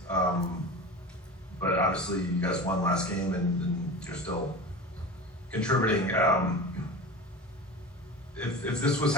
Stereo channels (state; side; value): normal; both; correlation 0.31